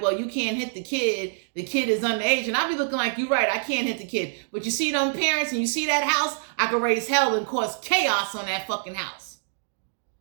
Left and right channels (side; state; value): left; silent; digital silence